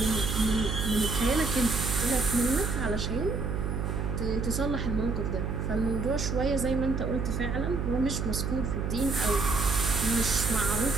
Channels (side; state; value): right; noise; hum, 1 dB below the sound